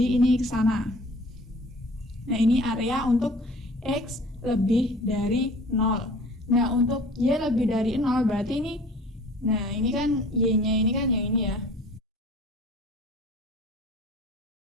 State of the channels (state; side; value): normal; both; correlation 0.48